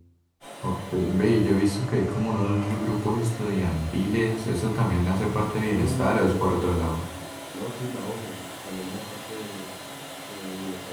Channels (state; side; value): identical; both; correlation 1.00